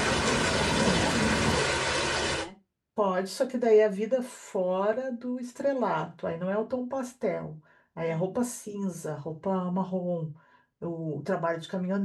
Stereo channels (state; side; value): identical; both; correlation 1.00